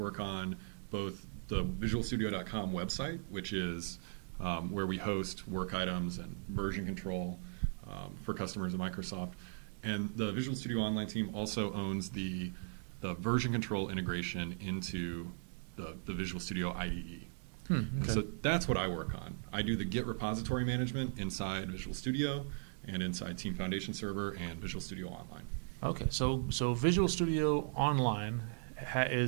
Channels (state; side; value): silent; left; digital silence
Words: on both the visualstudio.com website, which is where we host work items and version control for customers at Microsoft. And the Visual Studio Online team also owns the version control integration into the Visual Studio IDE. Okay. So that's what I work on. I do the Git repository management inside Visual Studio and inside Team Foundation Server and Visual Studio Online. Okay, so Visual Studio Online